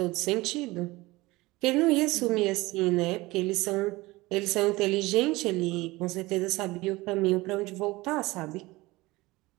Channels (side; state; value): left; quieter; 20.7 dB